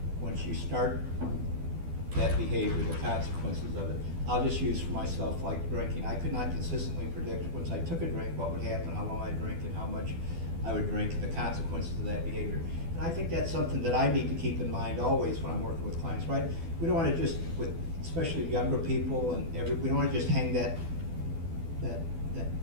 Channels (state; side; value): late; left; 12 ms